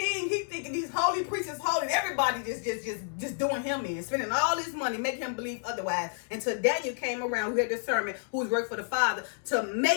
He thinking these holy priests is holy. Everybody just doing him in, spending all this money, making him believe otherwise. Until Daniel came around, who had discernment, who was working for the Father, to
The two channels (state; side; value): silent; right; digital silence